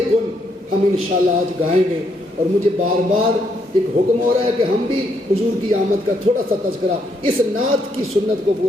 گن ہم انشاءاللہ آج گائیں گے. اور مجھے بار بار ایک حکم ہو رہا ہے کہ ہم بھی حضور کی آمد کا تھوڑا سا تذکرہ اس نعت کی سنت کو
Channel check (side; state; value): both; normal; correlation 0.75